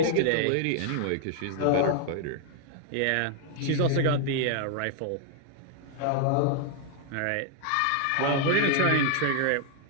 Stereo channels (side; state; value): both; different; correlation 0.00